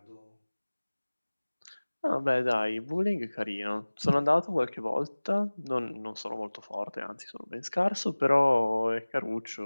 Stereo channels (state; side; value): inverted; both; correlation -1.00